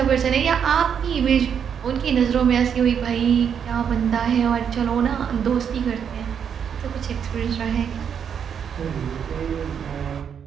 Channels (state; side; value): quieter; left; 7.7 dB